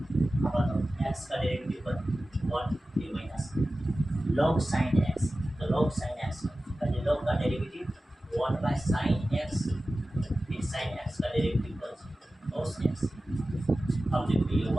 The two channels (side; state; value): both; normal; correlation 0.95